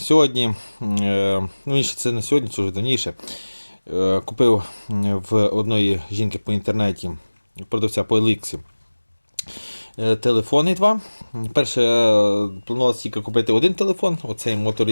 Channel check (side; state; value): both; inverted; correlation -1.00